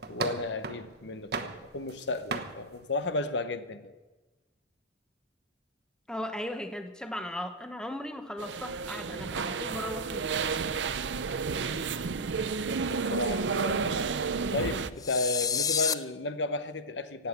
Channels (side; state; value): both; normal; correlation -0.07